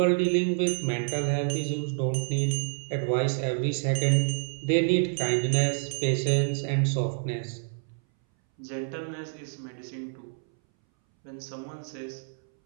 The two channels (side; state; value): left; silent; 59 dB below the other